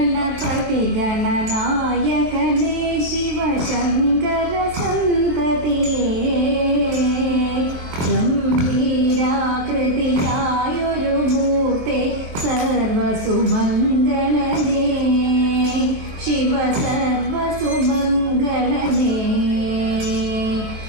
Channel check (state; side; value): late; left; 23 ms